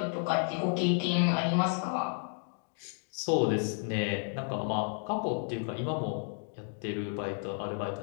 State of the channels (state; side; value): silent; right; 56 dB below the other